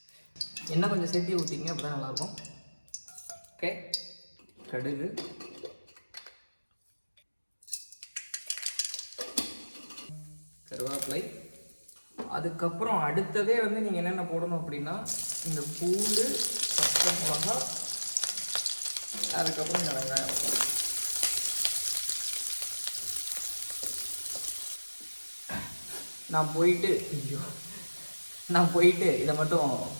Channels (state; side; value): inverted; both; correlation -1.00